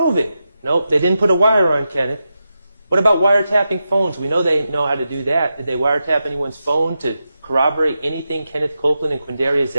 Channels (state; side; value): inverted; both; correlation -0.89